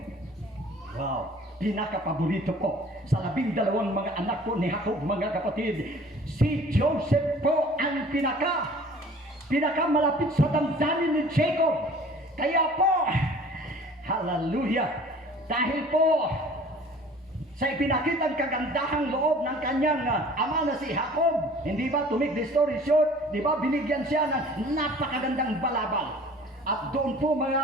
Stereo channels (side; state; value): both; normal; correlation 0.48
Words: Wow, pinakapaborito po sa 12 mga anak po ni Jacob mga kapatid. Si Joseph po ang pinakamalapit sa damdamin ni Jacob. Kaya po, hallelujah, dahil po sa ipinakitang kagandahang loob ng kanyang ama na si Jacob, hindi ba, to make the story short, di ba, binigyan siya ng napakagandang balabal. At doon po